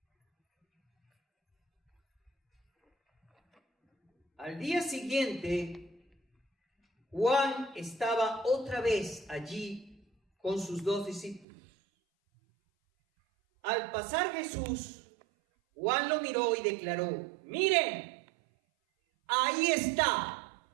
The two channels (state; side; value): drops out; left; at 11.5 s